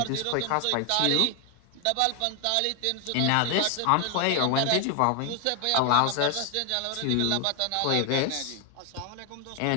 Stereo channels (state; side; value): different; both; correlation 0.01